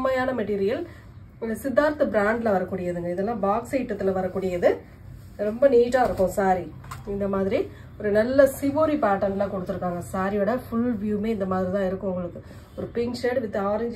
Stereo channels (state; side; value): identical; both; correlation 1.00